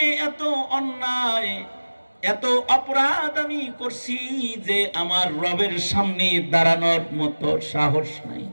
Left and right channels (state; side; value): inverted; both; correlation -1.00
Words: এত অন্যায় এত অপরাধ আমি করছি যে আমার রবের সামনে দাঁড়ানোর মতো সাহস নাই,